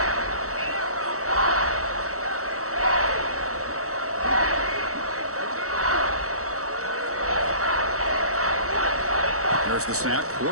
There's the snap.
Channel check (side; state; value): left; late; 0.65 ms